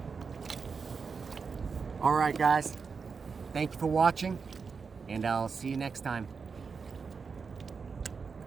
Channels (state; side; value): quieter; left; 5.3 dB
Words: All right, guys. Thank you for watching, and I'll see you next time.